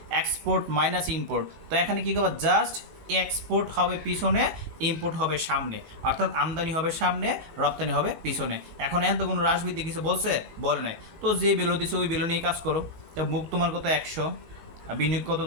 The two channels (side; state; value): left; late; 18 ms